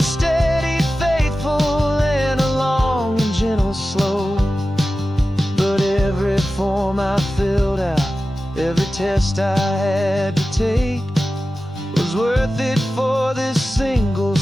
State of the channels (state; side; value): normal; both; correlation 0.94